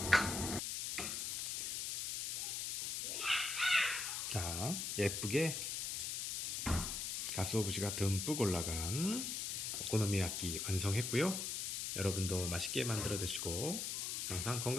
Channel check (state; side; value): noise; left; hiss, 2 dB below the sound